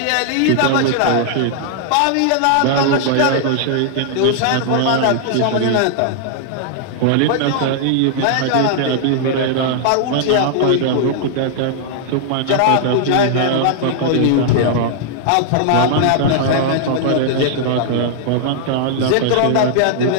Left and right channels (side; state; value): both; different; correlation -0.01